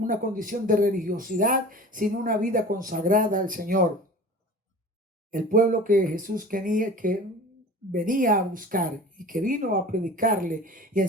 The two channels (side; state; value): both; normal; correlation 0.39